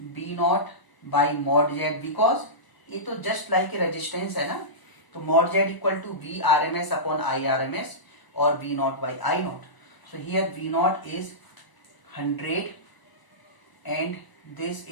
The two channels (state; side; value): late; right; 1.0 ms